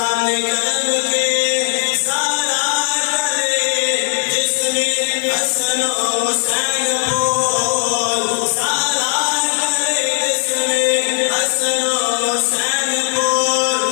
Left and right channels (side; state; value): right; silent; digital silence